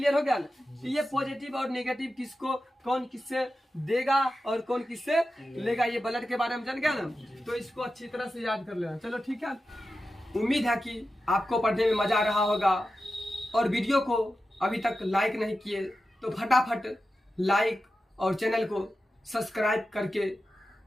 हो गया ना, तो ये पॉजिटिव और नेगेटिव किसको कौन किससे देगा और कौन किससे लेगा, ये ब्लड के बारे में जान गया ना, तो इसको अच्छी तरह से याद कर लेना। चलो ठीक है, उम्मीद है कि आपको पढ़ने में मजा आ रहा होगा, और वीडियो को अभी तक लाइक नहीं किए तो फटाफट लाइक और चैनल को सब्सक्राइब करके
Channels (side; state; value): both; normal; correlation 0.92